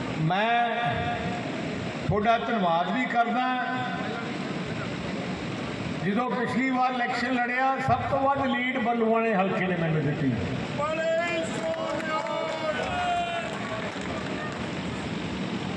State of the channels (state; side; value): identical; both; correlation 1.00